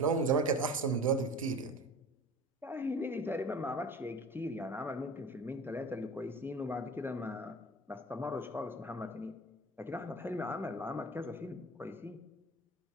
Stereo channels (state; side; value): normal; both; correlation 0.38